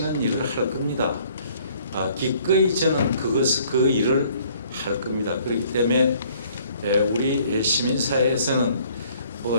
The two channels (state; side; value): inverted; both; correlation -0.59